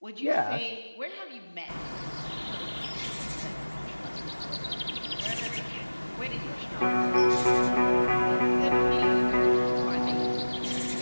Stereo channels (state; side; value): inverted; both; correlation -1.00